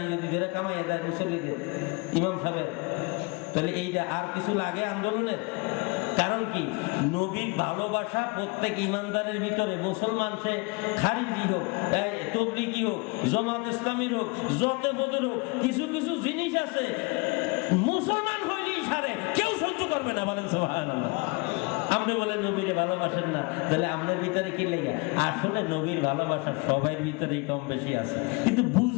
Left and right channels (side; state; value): right; quieter; 28.7 dB